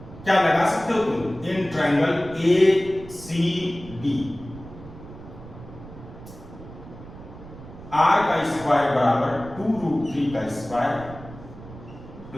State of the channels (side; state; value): right; noise; rumble, 16 dB below the sound